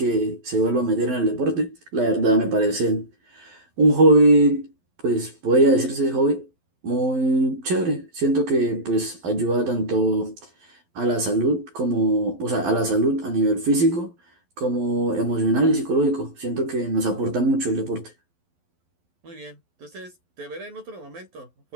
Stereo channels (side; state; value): left; late; 12 ms